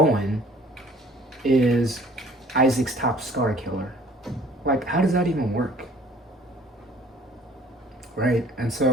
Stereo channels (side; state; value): both; normal; correlation 0.54